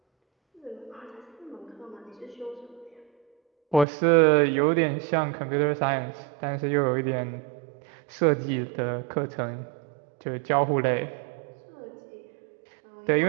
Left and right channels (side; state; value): left; drops out; at 3.9 s